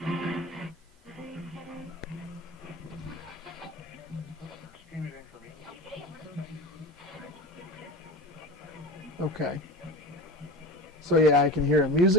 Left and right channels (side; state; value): both; normal; correlation 0.30